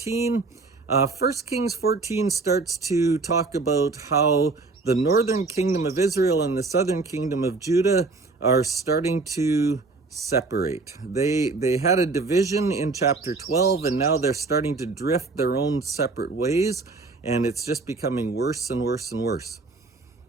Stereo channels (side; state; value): left; quieter; 3.8 dB